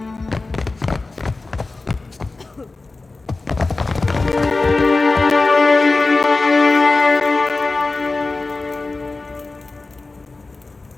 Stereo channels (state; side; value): quieter; right; 3.5 dB